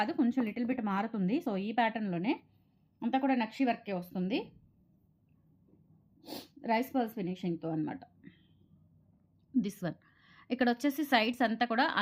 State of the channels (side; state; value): both; identical; correlation 1.00